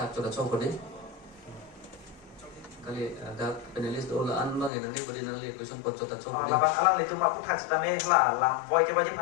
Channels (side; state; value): right; drops out; at 4.7 s